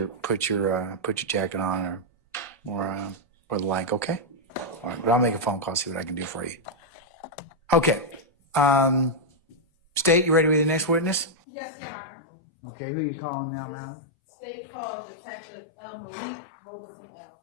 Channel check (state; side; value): drops out; right; at 11.4 s